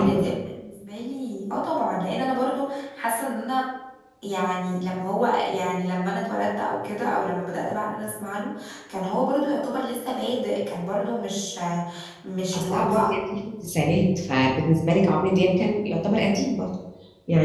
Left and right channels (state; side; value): identical; both; correlation 1.00